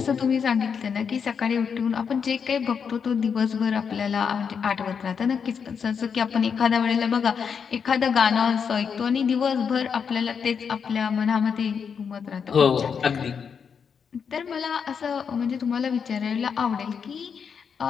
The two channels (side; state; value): right; quieter; 6.6 dB